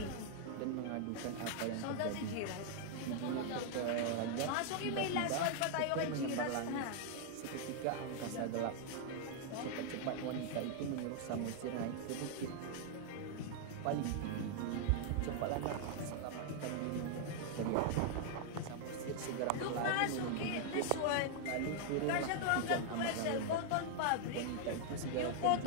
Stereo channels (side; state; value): both; different; correlation 0.00